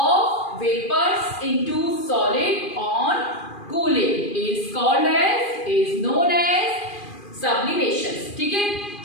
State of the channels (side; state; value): right; late; 2.4 ms